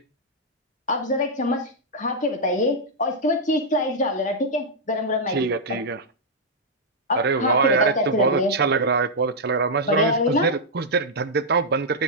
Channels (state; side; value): normal; both; correlation -0.06